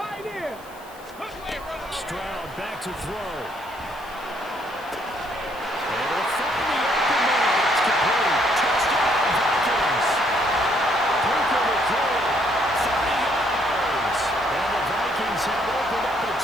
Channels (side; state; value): left; noise; hiss, 24 dB below the sound